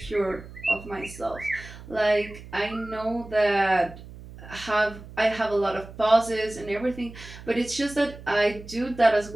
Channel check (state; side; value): noise; right; hum, 16 dB below the sound